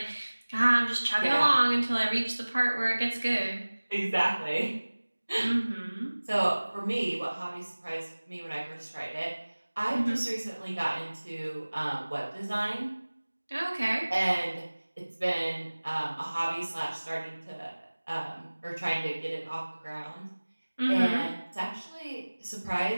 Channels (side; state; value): both; inverted; correlation -1.00